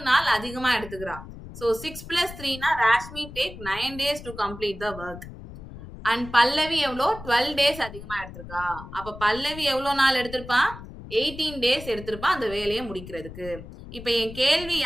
நாள் அதிகமா எடுத்துக்கிறா. So 6 + 3 Rashmi take 9 days to complete the work. And Pallavi எவ்வளோ, 12 days அதிகமா எடுத்திருக்கா. அப்ப பல்லவி எவ்வளோ நாள் எடுத்திருப்பா, 18 days எடுத்திருப்பா அந்த வேலையை முடிக்கிறதுக்கு. இப்ப என் கேள்வி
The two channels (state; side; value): noise; left; rumble, 14 dB below the sound